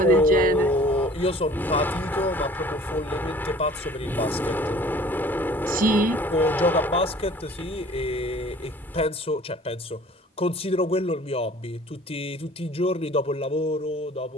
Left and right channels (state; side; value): normal; both; correlation 0.50